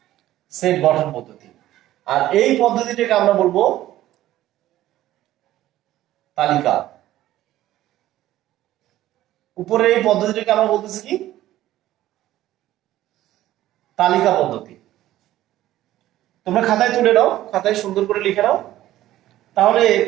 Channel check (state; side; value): quieter; left; 14.3 dB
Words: সেট গঠন পদ্ধতি। আর এই পদ্ধতিটাকে আমরা বলবো তালিকা। উপরের এই পদ্ধতিটাকে আমরা বলতেছি কি তালিকা পদ্ধতি। তোমরা খাতায় তুলে নাও, খাতায় সুন্দর করে লিখে নাও, তাহলে